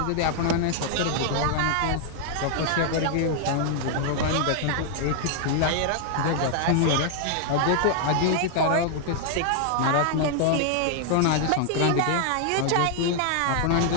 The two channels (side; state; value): both; different; correlation 0.00